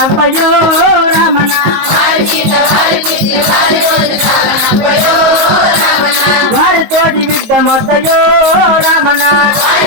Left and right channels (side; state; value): left; late; 19 ms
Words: రామన వారితోటి విడ్డమొద్దయో రామన